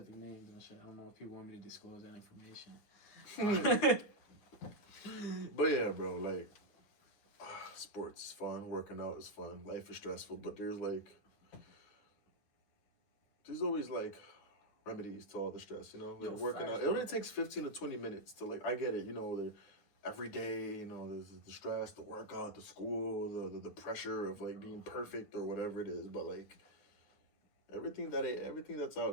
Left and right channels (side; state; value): right; late; 9.8 ms